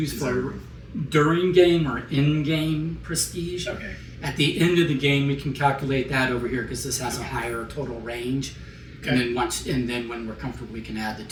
for during game or in game prestige. Okay. At the end of the game, we can calculate that over here because this has a higher total range. Okay. And then when we're comfortable, we can add the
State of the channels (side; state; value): both; identical; correlation 1.00